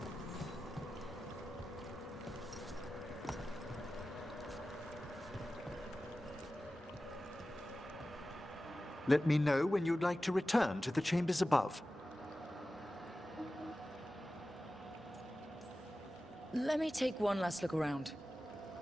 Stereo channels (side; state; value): both; normal; correlation 0.95